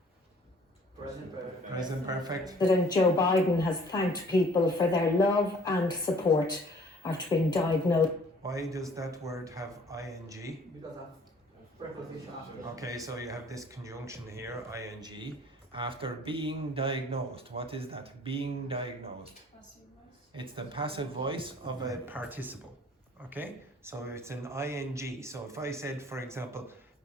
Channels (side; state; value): both; normal; correlation 0.54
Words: Present perfect. Present perfect. Joe Biden has thanked people for their love and support after being diagnosed. Why does that word have ing? Because of preposition after. Okay, so you have this conjunction here, ing, after being diagnosed. What is that? Being diagnosed. It's the passive voice of a participle. Okay, so it's an ing. So if I said, for example,